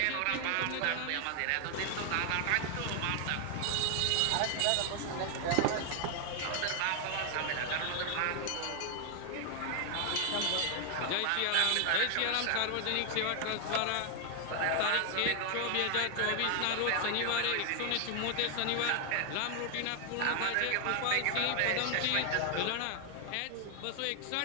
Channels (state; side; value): different; both; correlation 0.00